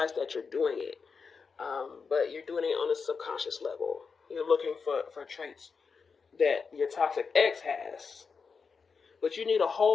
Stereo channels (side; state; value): right; quieter; 5.3 dB